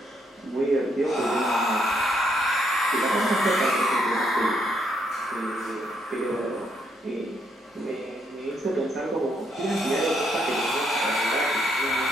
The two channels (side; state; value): both; normal; correlation 0.74